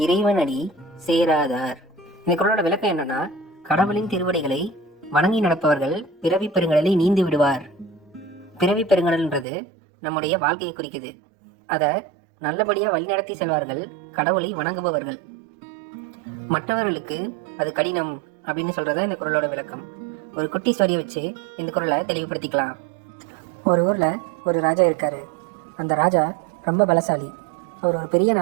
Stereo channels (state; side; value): drops out; left; at 9.5 s